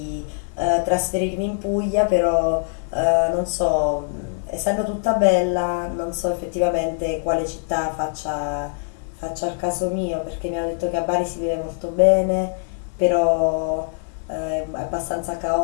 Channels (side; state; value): right; silent; digital silence